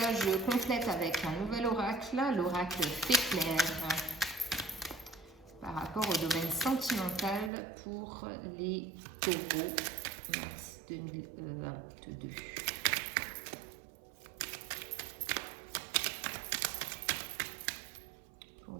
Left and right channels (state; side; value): drops out; left; at 7.5 s